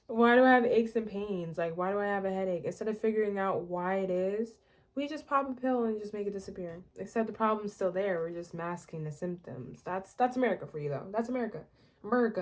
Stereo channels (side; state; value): both; identical; correlation 1.00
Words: why do I have aches and pains? Like, why do I have a headache? Instead of figuring out why it is, we just pop a pill and just make it disappear. Except the problem's still there. We're just masking the symptoms. That's America for you, though. That's America.